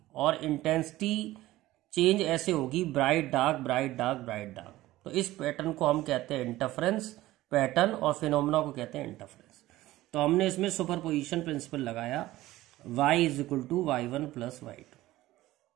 और इंटेंसिटी चेंज ऐसे होगी ब्राइट डार्क। तो इस पैटर्न को हम कहते हैं इंटरफेरेंस पैटर्न, और फिनोमेना को कहते हैं इंटरफेरेंस। तो हमने इसमें सुपरपोजिशन प्रिंसिपल लगाया, y is equal to y1 plus y2।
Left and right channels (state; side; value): quieter; left; 16.6 dB